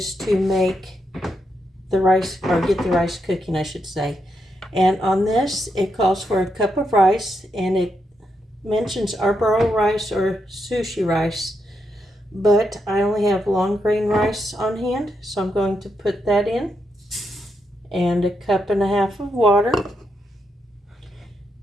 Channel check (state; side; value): normal; both; correlation 0.82